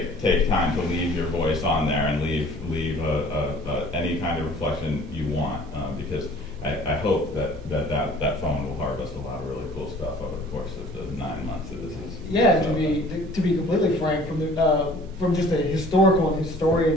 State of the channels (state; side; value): normal; both; correlation 0.50